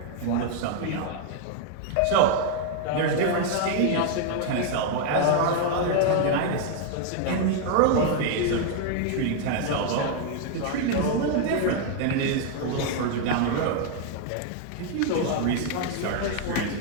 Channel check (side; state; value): both; different; correlation 0.00